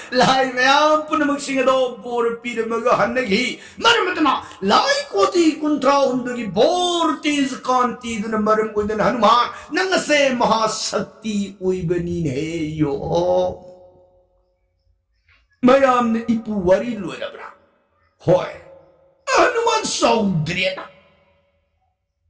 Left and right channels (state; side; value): identical; both; correlation 1.00